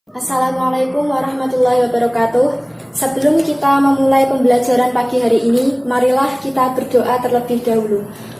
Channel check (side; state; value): both; identical; correlation 1.00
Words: Assalamualaikum warahmatullahi wabarakatuh. Sebelum kita memulai pembelajaran pagi hari ini, marilah kita berdoa terlebih dahulu.